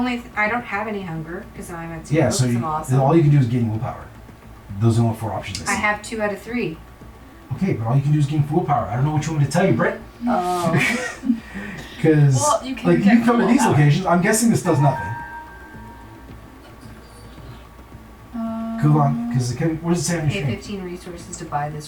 I don't have any hunger because I'm at 0. Yeah, so I'm awesome. all you can do is gain willpower. Those are the only 4 options I I see. have 2 out of 3. Okay, but all you can do is gain willpower. I don't know which one to tell you, Brett. Oh. Because Well, you can like get you come to these willpower. locations, I'm guessing this does nothing. Cool on, because what does it say on your Pay screen? 15 resources to buy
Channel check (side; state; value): both; identical; correlation 1.00